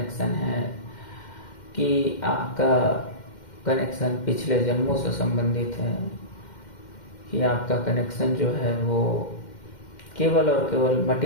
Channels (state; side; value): late; right; 2.1 ms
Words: है, कि आपका कनेक्शन पिछले जन्मों से संबंधित है, कि आपका कनेक्शन जो है वो केवल और केवल